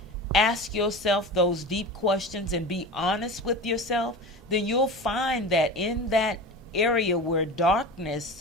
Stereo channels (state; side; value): normal; both; correlation 0.31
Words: ask yourself those deep questions and be honest with yourself, then you'll find that in that area where